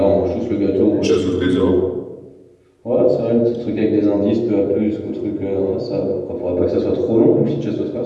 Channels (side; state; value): both; identical; correlation 1.00